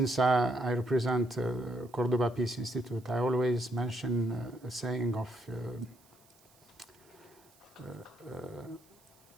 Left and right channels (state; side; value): noise; right; hiss, 29 dB below the sound